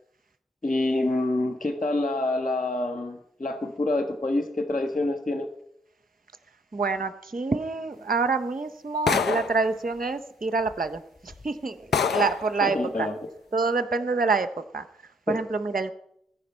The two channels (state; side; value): normal; both; correlation 0.65